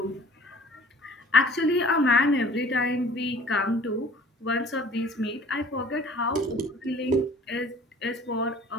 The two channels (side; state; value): both; normal; correlation 0.50